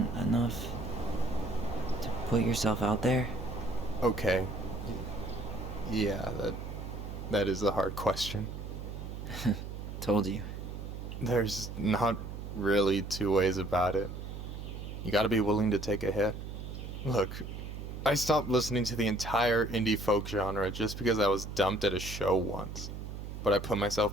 enough to put yourself out there? Okay. Yeah, that is a hard question. Told you. There's not really two ways about it. You gotta be willing to take a hit. Look, I stopped listening to the entire indie folk genre just because I was dumped at a show once. But I put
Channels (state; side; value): noise; right; hum, 8 dB below the sound